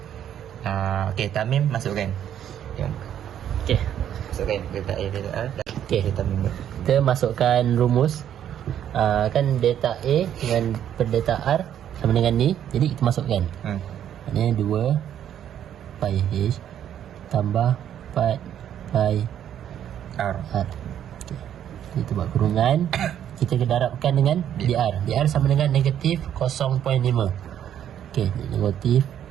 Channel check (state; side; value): quieter; left; 10.1 dB